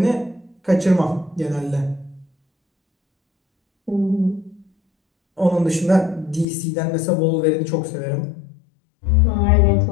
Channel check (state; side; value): drops out; right; at 6.5 s